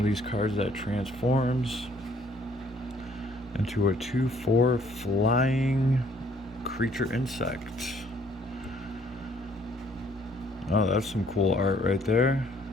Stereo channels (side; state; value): both; normal; correlation 0.62